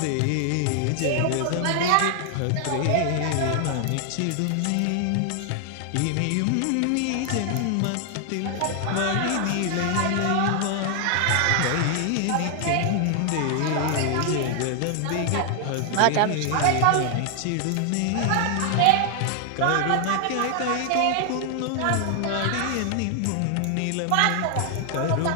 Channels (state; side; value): different; both; correlation 0.00